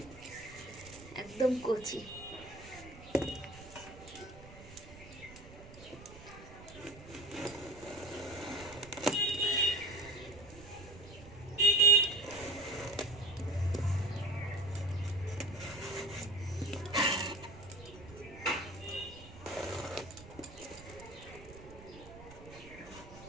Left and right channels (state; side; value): noise; right; rumble, 17 dB below the sound